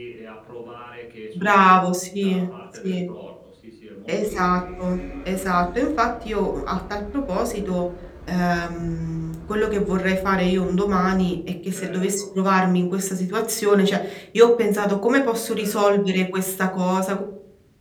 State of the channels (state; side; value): identical; both; correlation 1.00